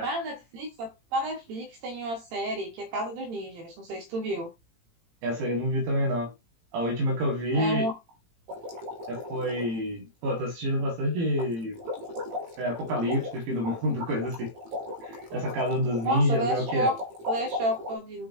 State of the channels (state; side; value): late; left; 18 ms